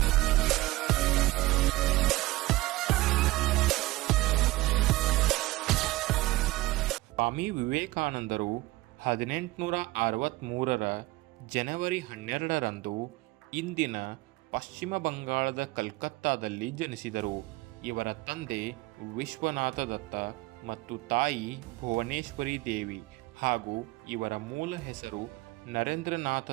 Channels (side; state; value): left; quieter; 19.5 dB